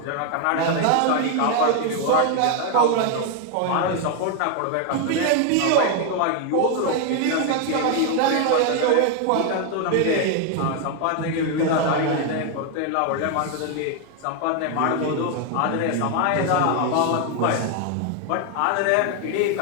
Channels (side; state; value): both; different; correlation 0.01